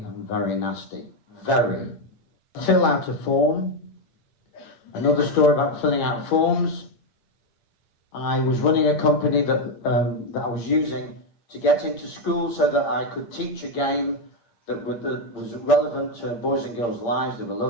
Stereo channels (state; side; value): late; right; 8.7 ms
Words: very nasty. Very. Fill out a form. Another story about filling out forms. I was running a company that I was using to get into school so that I could teach a game that was relevant to boys and girls' lives. They were